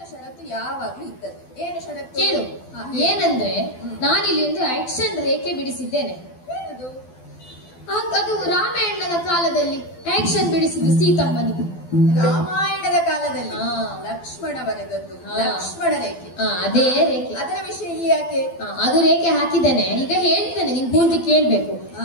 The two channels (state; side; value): late; right; 12 ms